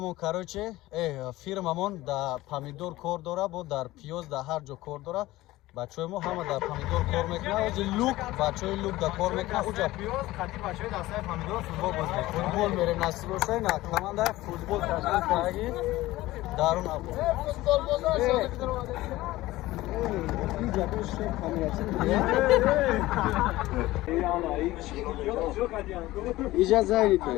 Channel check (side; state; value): right; quieter; 17.6 dB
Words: кароче фирмамон дар помидор кор дора бо дар пиёз дар ҳар ҷо кор дора бачаҳои мо ҳама дар помидор кор мекунад ози лук бачаҳои лук дар кор мекунад уҷа пиёз қати бачаҳои дастаи помидор футбол боз мекунад футбол мерем насиб бошад на командаи футбол ташкил кардаги дарун або иҷа зайнита